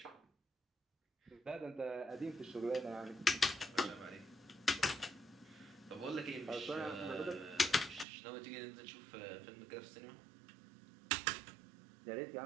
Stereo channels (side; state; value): left; drops out; at 8.1 s